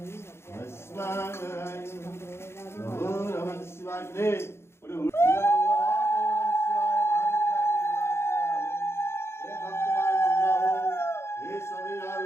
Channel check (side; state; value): right; late; 0.12 ms